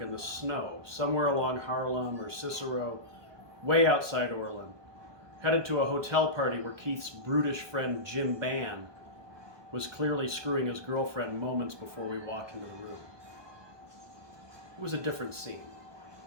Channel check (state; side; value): late; left; 1.2 ms